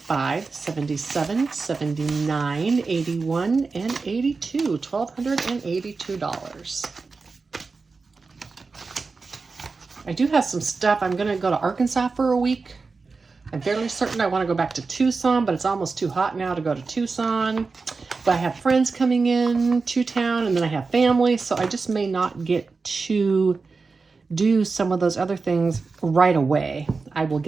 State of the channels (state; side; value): quieter; left; 4.3 dB